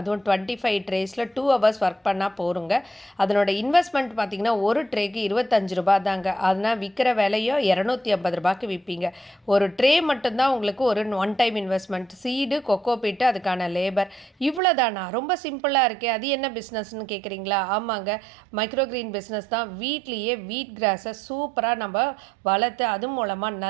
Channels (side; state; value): left; drops out; at 14.6 s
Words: 25 ட்ரேஸில் 2 hours work பண்ணால் போருங்க. அதனோட இன்வெஸ்ட்மெண்ட் பார்த்திங்கன்னா ஒரு ட்ரேக்கு 25 ரூபா தாங்க. அதனால் விற்கிற விலையோ 250 ரூபாய்க்கு விற்பீங்க. ஒரு ட்ரே மட்டும்தான் உங்களுக்கு ஒரு one time investment, seed, coco peat, அதுக்கான லேபர், இவ்வளோ தானா? ரொம்ப சிம்பிளாக இருக்கே, அது என்ன பிஸ்னஸ்ன்னு கேட்குறீங்களா? ஆமாங்க, மைக்ரோக்ரீன் பிஸ்னஸ் தான். வீட்லேயே வீட் கிராஸை சூப்பராக நம்ம வளர்த்து அது மூலமாக